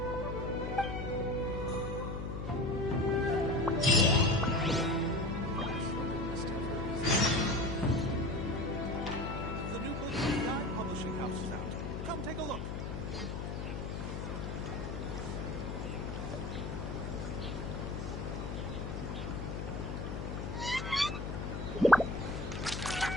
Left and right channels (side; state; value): left; noise; hum, 4 dB below the sound